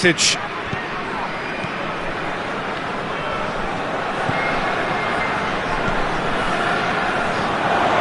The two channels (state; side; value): identical; both; correlation 1.00